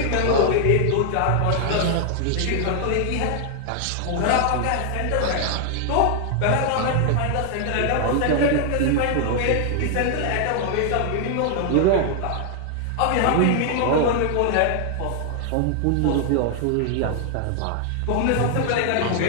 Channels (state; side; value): different; both; correlation 0.00